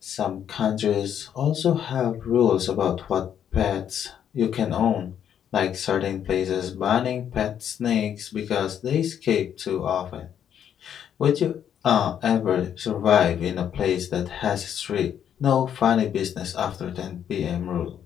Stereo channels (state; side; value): quieter; right; 9.2 dB